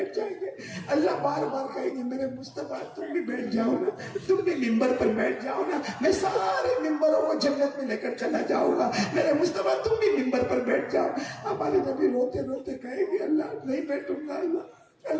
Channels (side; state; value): both; identical; correlation 1.00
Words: جائیں گے. اللہ بار بار کہیں گے میرے مصطفیٰ تم بھی بیٹھ جاؤ نا, تم بھی منبر پر بیٹھ جاؤ نا, میں سارے منبروں کو جنت میں لے کر چلا جاؤں گا. میرے مصطفیٰ تم بھی منبر پر بیٹھ جاؤ. ہمارے نبی روتے روتے کہیں گے اللہ نہیں بیٹھوں گا.